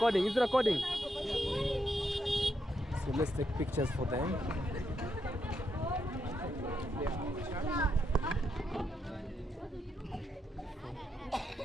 It's recording. So let's take pictures for them.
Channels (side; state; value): both; normal; correlation 0.81